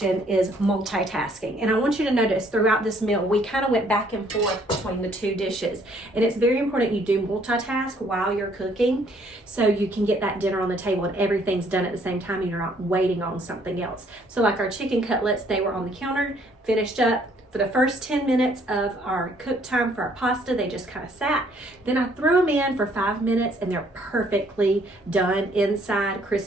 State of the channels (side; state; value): both; normal; correlation 0.64